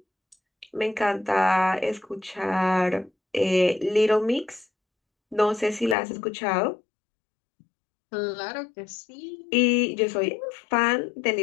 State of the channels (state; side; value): drops out; right; at 6.0 s